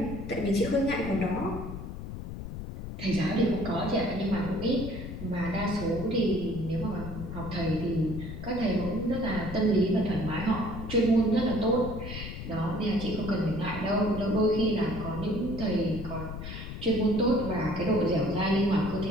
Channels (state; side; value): noise; left; rumble, 8 dB below the sound